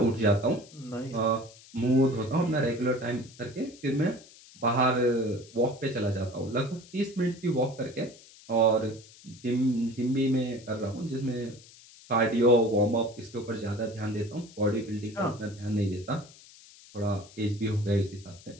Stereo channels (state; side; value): noise; left; hiss, 22 dB below the sound